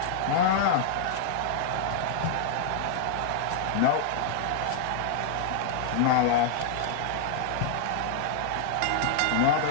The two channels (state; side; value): different; both; correlation -0.01